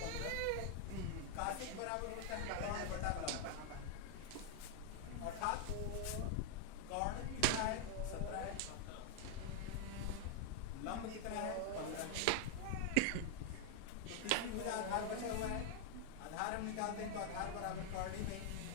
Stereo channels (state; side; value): different; both; correlation 0.00